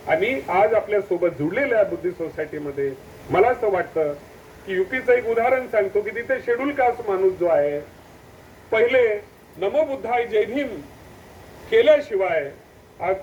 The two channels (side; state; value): both; identical; correlation 1.00